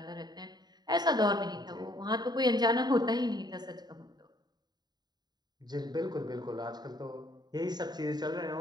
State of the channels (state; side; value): late; left; 0.20 ms